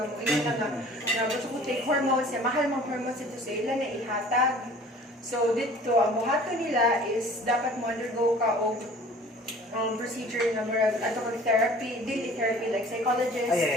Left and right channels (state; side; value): normal; both; correlation 0.48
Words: mo. Ina na nga gusto ko take hormones, mahal mga hormones dito sa ila na ihatag. So dito, ang buhato nila is dapat mo undergo ka o procedure na murag ato kang therapy, daily therapy like psychologist,